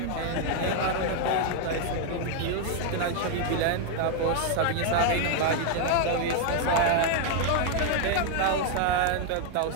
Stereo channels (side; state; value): both; different; correlation 0.00